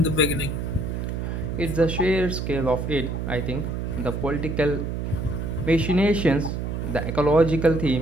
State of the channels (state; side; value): noise; right; hum, 3 dB below the sound